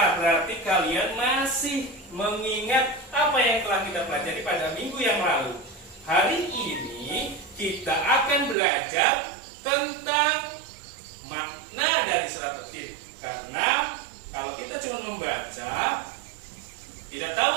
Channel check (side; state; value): left; drops out; at 8.6 s